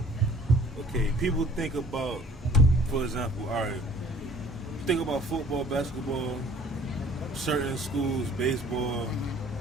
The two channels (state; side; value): normal; both; correlation 0.54